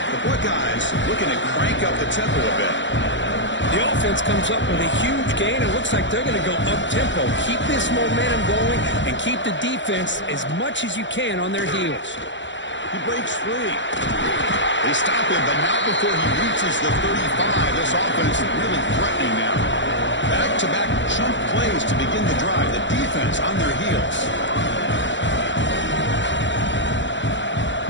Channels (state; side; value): late; right; 0.54 ms